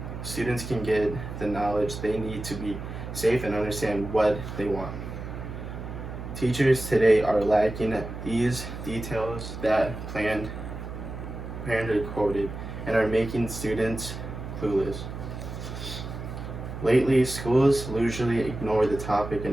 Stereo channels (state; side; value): noise; right; hum, 8 dB below the sound